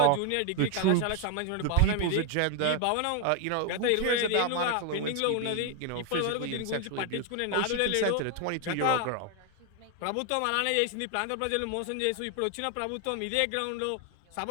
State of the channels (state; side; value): different; both; correlation 0.00